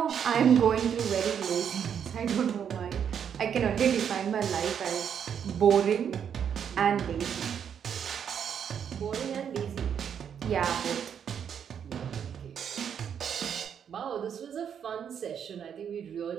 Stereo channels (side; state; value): left; quieter; 8.1 dB